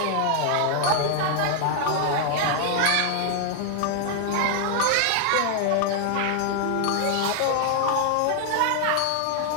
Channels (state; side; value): different; both; correlation 0.00